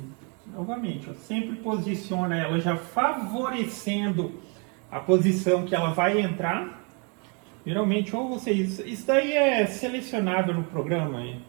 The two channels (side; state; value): left; quieter; 34.9 dB